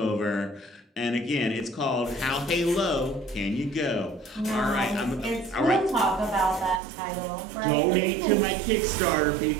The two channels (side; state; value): left; drops out; at 6.8 s